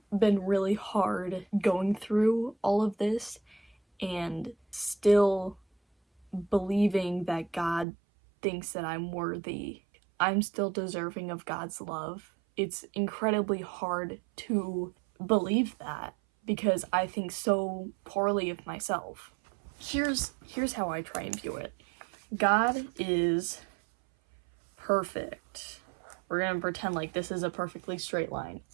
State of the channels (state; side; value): drops out; left; at 7.9 s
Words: been really hard going through all of this and still believing that God thinks that I'm worthy. I'm still deserving of God's love. It's incredibly hard to believe that because I think so poorly of myself. Here's how I try and view it. God is perfect. We're gonna pretend like this is a perfectly straight line.